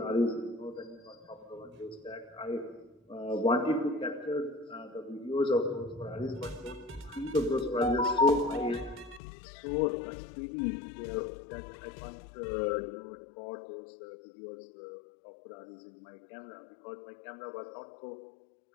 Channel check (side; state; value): right; drops out; at 9.2 s